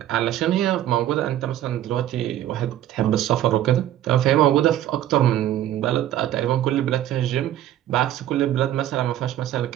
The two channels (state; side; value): quieter; left; 12.5 dB